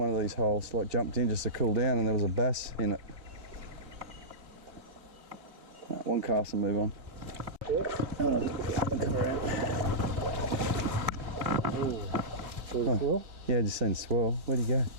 of these holes, like jumped in just to cool down, and there was a bass in it. One cast and move on. Yeah. Come around. Oh. Swirl? Yeah, just seen swirl. Where'd he go?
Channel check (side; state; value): left; late; 3.3 ms